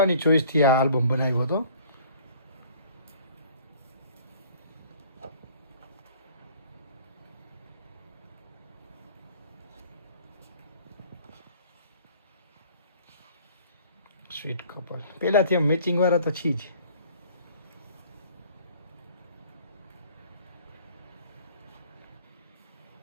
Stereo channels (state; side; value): inverted; both; correlation -0.52